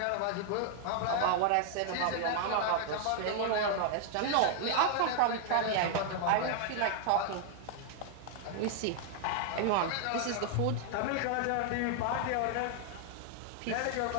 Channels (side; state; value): both; different; correlation 0.00